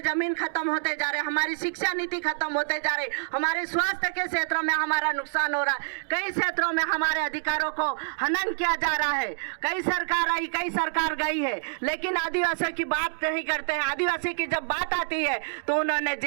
जमीन खत्म होते जा रहे हैं, हमारी शिक्षा नीति खत्म होते जा रही, हमारे स्वास्थ्य के क्षेत्रों में हमारा नुकसान हो रहा है, कई क्षेत्रों में हमारे अधिकारों को हनन किया जा रहा है। कई सरकार आई, कई सरकार गई है, लेकिन आदिवासियों की बात नहीं करते हैं। आदिवासी की जब बात आती है तो उन्होंने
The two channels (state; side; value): silent; left; digital silence